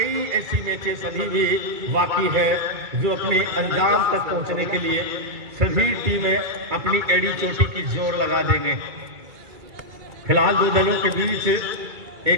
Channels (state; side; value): late; left; 2.3 ms